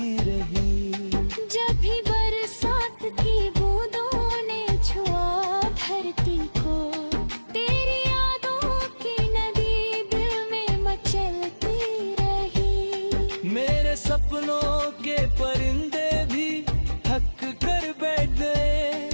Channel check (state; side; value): inverted; both; correlation -1.00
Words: रही। जब भी बरसात की बूंदों ने छुआ धरती को, तेरी यादों की नदी दिल में मचलती रही। मेरे सपनों के परिंदे भी थक कर बैठ गए,